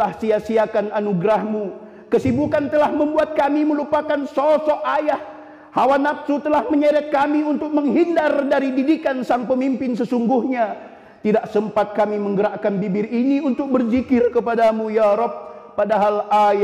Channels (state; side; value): identical; both; correlation 1.00